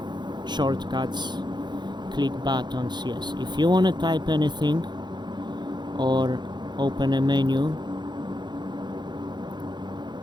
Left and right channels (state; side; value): late; left; 0.21 ms